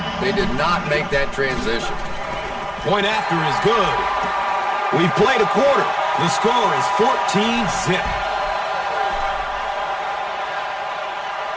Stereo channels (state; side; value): identical; both; correlation 1.00